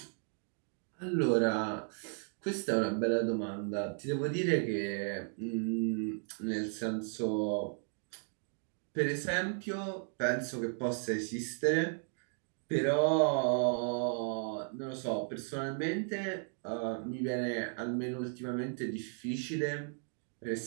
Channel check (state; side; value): silent; left; 54 dB below the other